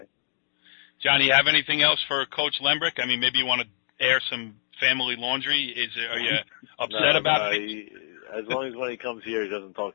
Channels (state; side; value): silent; right; 61 dB below the other